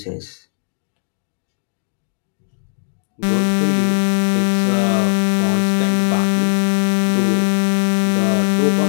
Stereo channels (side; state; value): right; silent; digital silence